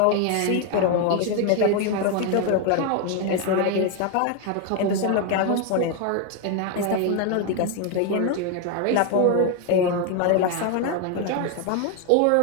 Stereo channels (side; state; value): both; different; correlation 0.01